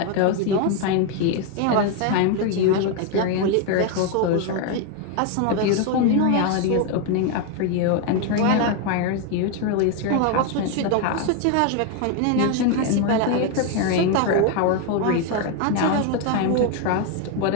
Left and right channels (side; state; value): both; different; correlation 0.01